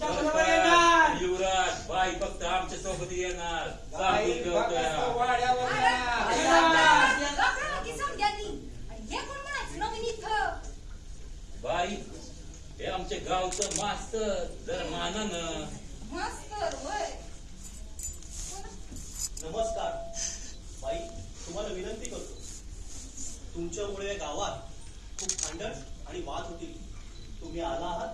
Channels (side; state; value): both; identical; correlation 1.00